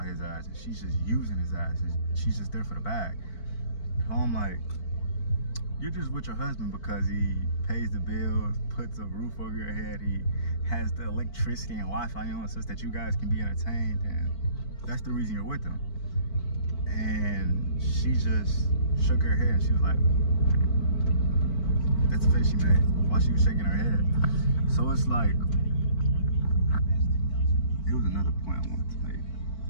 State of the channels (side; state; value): right; late; 4.5 ms